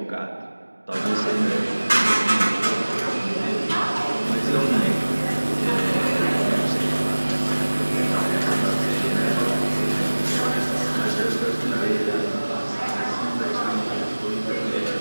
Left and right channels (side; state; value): both; inverted; correlation -1.00